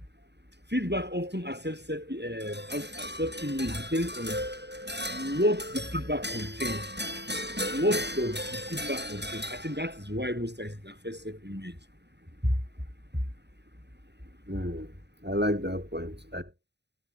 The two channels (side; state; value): left; late; 0.50 ms